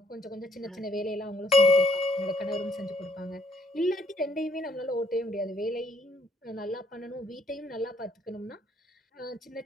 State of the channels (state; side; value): normal; both; correlation 0.67